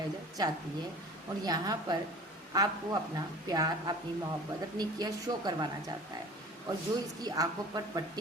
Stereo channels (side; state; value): both; normal; correlation 0.42